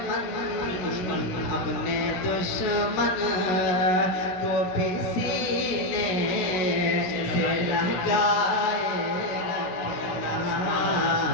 अपने दुश्मन को भी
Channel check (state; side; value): late; right; 16 ms